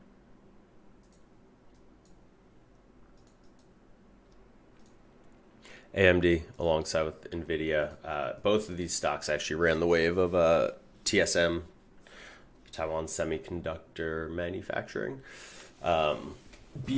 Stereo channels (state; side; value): identical; both; correlation 1.00